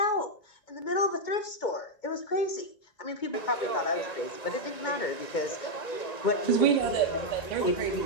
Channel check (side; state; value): right; late; 1.9 ms